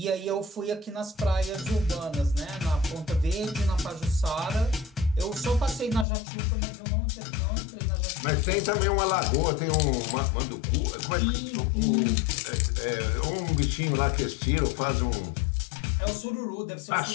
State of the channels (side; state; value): right; drops out; at 6.1 s